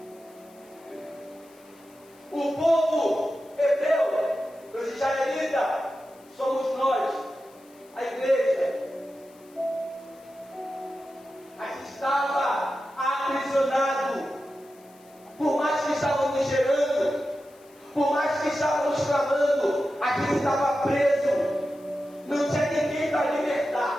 O povo hebreu, os israelitas, somos nós, a igreja. A gente estava aprisionado, por mais que estávamos gerando, por mais que estávamos clamando, a gente estava preso, não tinha ninguém para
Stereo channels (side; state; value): left; noise; hiss, 28 dB below the sound